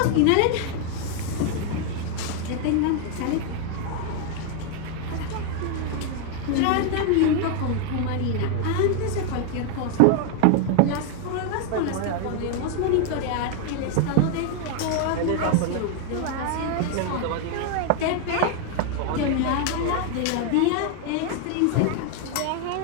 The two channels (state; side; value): different; both; correlation 0.00